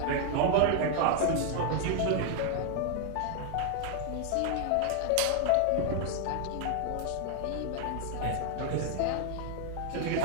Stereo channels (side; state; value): both; different; correlation 0.00